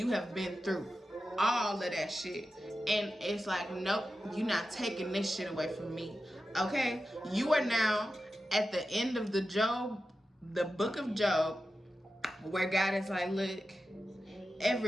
have been through all of that shit. And it's like, nope, you're not taking this shit away from me. Okay? You are now at the end of the book of Job, where God is like, look,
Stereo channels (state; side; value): normal; both; correlation 0.92